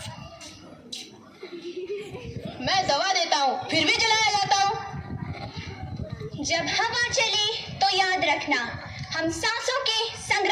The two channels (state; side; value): identical; both; correlation 1.00